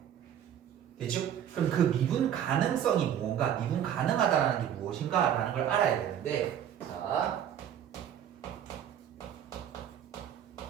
됐죠? 그럼 그 미분 가능성이 뭔가, 미분 가능하다는 게 무엇인가 라는 걸 알아야 되는데, 자,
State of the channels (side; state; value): left; quieter; 9.8 dB